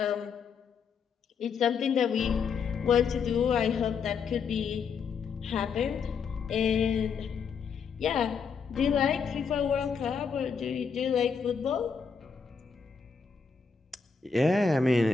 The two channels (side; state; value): right; quieter; 5.8 dB